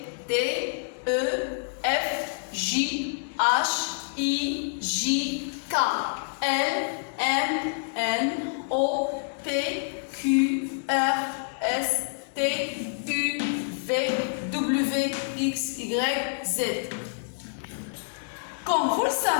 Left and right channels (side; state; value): right; silent; 60 dB below the other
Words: D, E, F, J, H, I, J, K, L, M, N, O, P, Q, R, S, T, U, V, W, X, Y, Z. Comme vous le